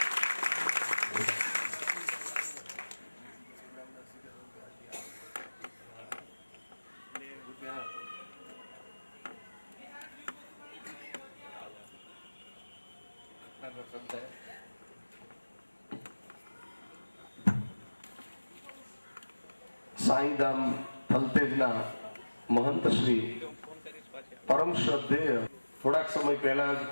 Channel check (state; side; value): inverted; both; correlation -1.00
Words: સાઈધામ થલતેજના મહંત શ્રી પરમ શ્રદ્ધેય થોડાક સમય પહેલા જ